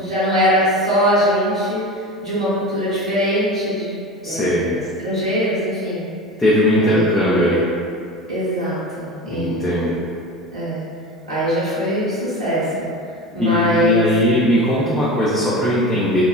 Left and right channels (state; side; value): normal; both; correlation 0.31